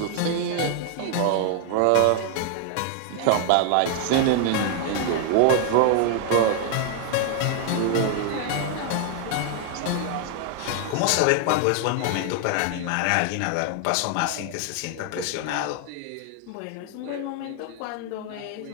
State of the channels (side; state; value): both; different; correlation 0.00